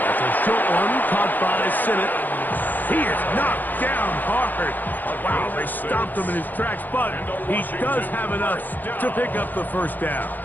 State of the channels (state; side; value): late; right; 0.086 ms